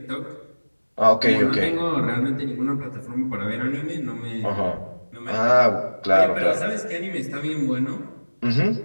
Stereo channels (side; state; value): both; inverted; correlation -1.00